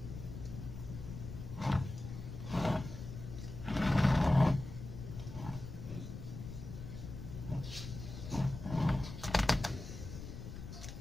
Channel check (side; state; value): left; noise; rumble, 9 dB below the sound